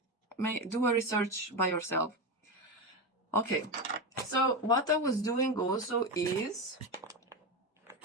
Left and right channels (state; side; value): normal; both; correlation 0.16